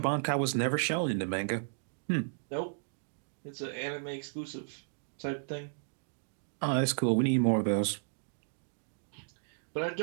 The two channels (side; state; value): left; silent; digital silence